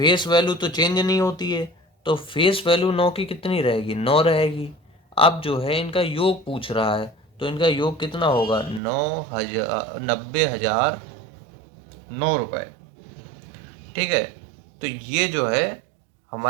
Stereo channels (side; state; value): left; drops out; at 8.8 s